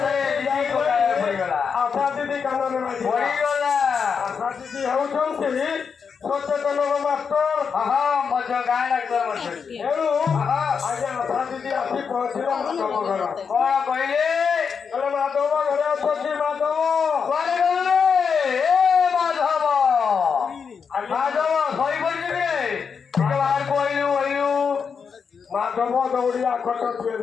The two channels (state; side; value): quieter; right; 6.1 dB